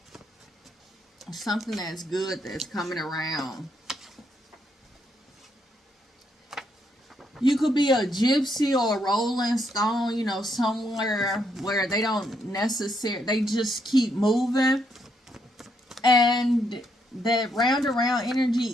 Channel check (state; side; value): normal; both; correlation 0.75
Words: Something that's good that's coming around. You could be a gypsy or a rolling stone, somewhere where they don't necessarily, they just keep moving. And that round around